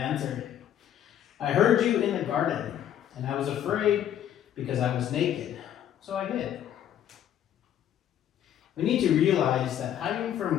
I heard you in the garden, and I was afraid because I was naked, so I hid. We need to realize that hiding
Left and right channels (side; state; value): right; quieter; 10.5 dB